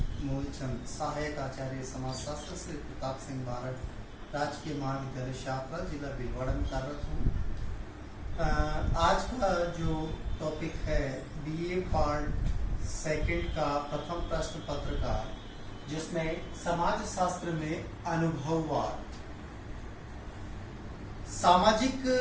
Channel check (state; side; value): identical; both; correlation 1.00